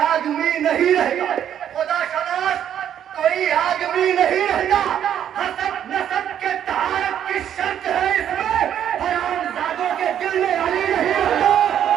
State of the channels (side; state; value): left; quieter; 9.9 dB